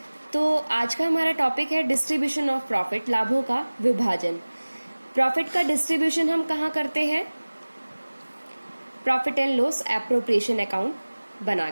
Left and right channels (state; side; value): inverted; both; correlation -1.00